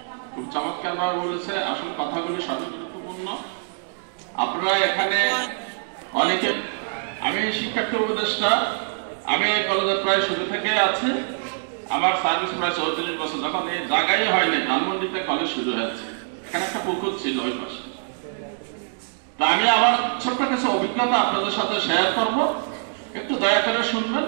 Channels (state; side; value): silent; left; digital silence